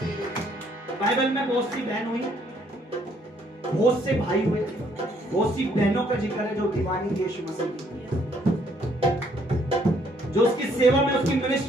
बाइबल में बहुत सी बहन हुई, बहुत से भाई हुए, बहुत सी बहनों का जिक्र है जो दीवानी यीशु मसीह की, जो उसकी सेवा में, उसकी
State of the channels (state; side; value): normal; both; correlation 0.67